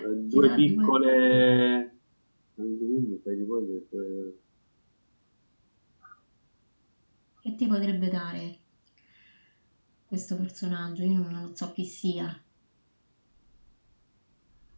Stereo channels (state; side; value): inverted; both; correlation -1.00